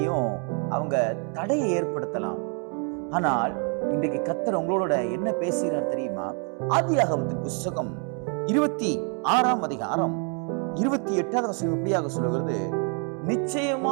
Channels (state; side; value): quieter; left; 40.0 dB